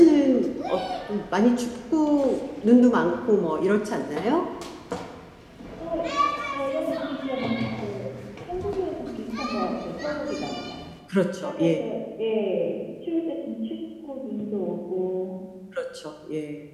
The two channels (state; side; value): identical; both; correlation 1.00